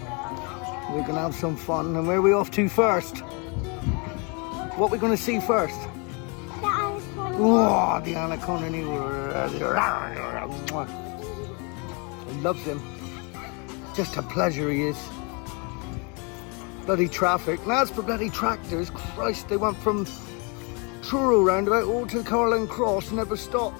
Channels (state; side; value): quieter; right; 32.6 dB